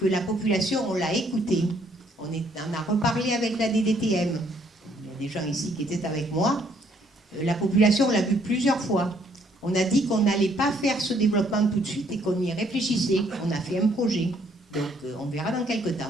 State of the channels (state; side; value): normal; both; correlation 0.66